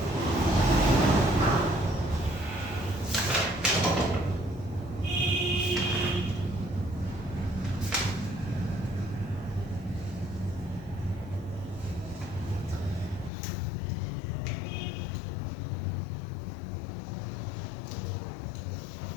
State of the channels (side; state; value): right; drops out; at 13.3 s